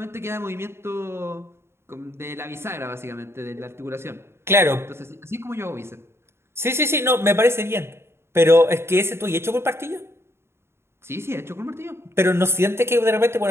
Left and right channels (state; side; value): late; left; 0.12 ms